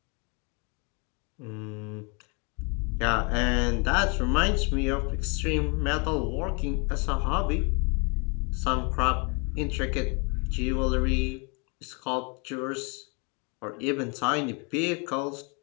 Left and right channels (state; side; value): quieter; right; 33.1 dB